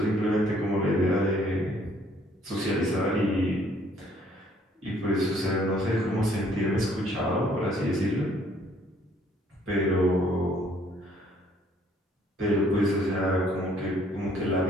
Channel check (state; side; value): normal; both; correlation 0.62